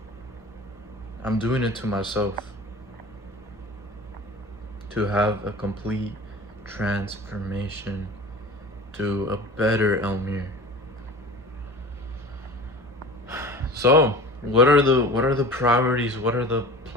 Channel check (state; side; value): normal; both; correlation 0.37